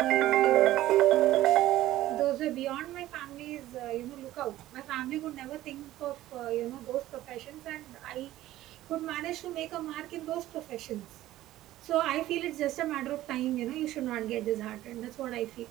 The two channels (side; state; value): left; quieter; 14.9 dB